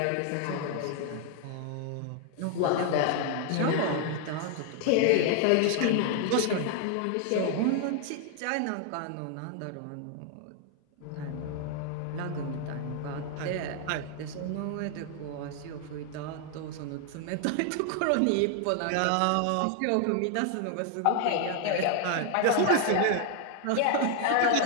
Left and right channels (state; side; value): different; both; correlation 0.00